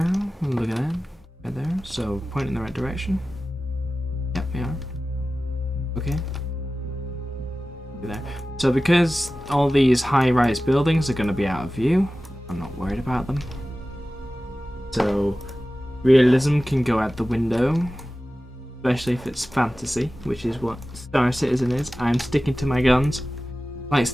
Look at that. Right there. So point in the right direction. Yep, we are. Okay. There. So because all these high-rise buildings are going to be out of view, I'm not worried about them. So realism can go out the window. Especially if it's fantasy, which is what Star Citizen is. I'm sticking to my guns. Like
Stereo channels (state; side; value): normal; both; correlation 0.95